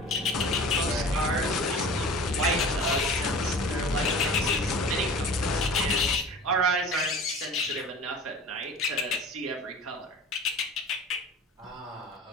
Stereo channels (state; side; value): normal; both; correlation 0.40